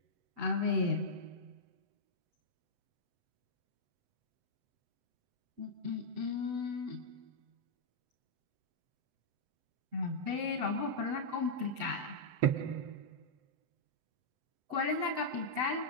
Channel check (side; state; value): left; late; 7.9 ms